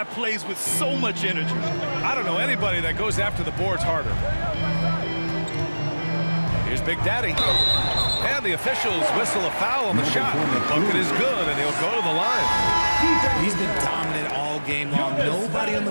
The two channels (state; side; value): inverted; both; correlation -1.00